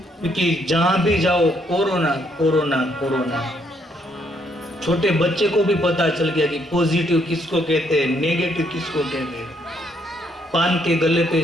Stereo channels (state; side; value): normal; both; correlation 0.71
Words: क्योंकि जहां भी जाओ कोरोना कोरोना कोरोना। छोटे बच्चे को भी पता चल गया कि पॉजिटिव किसको कहते हैं, नेगेटिव किसको कहते हैं। पान के गले